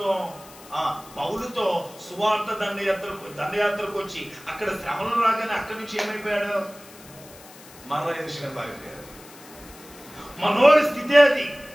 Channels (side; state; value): left; noise; hiss, 20 dB below the sound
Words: పౌలుతో సువార్త దండయాత్రకు వచ్చి అక్కడ శ్రమలు రాగానే అక్కడి నుంచి ఏమైపోయాడు? మరలా యెరూషలేము పారిపోయాడు. మనోడి స్థితి అది.